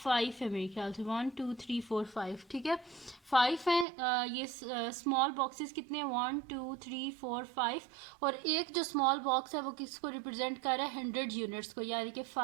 है मेरे ख्याल से, 1 2 3 4 5, ठीक है 5 है। ये स्मॉल बॉक्सेस कितने हैं, 1 2 3 4 5, और एक जो स्मॉल बॉक्स है वो किसको रिप्रेजेंट कर रहा है, 100 यूनिट्स को, यानी कि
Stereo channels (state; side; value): drops out; left; at 3.9 s